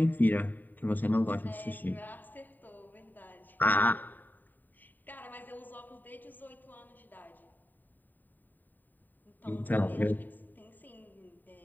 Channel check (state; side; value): late; right; 0.089 ms